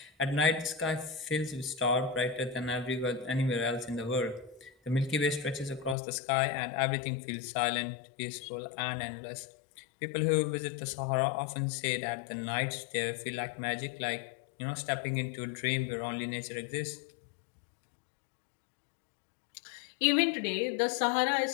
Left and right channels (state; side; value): drops out; right; at 6.0 s